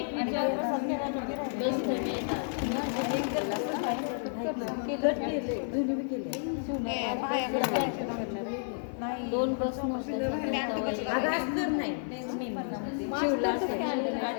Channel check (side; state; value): right; silent; 57 dB below the other